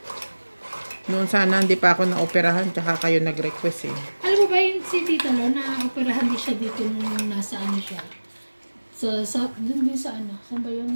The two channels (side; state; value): both; inverted; correlation -1.00